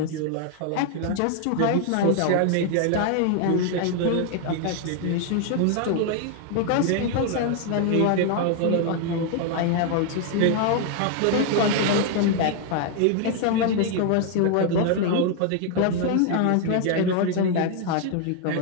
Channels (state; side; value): different; both; correlation 0.00